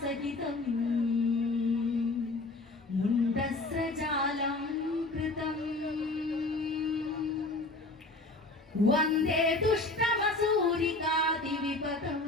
മുണ്ഡസ്രജാലം കൃതം വന്ദേ ദുഷ്ടമസൂരികാതിവിപദം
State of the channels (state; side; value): quieter; right; 3.0 dB